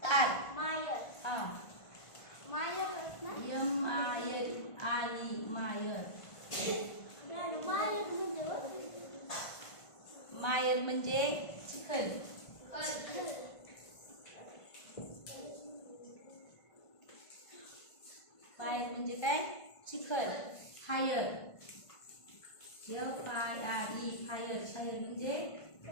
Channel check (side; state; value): right; late; 1.5 ms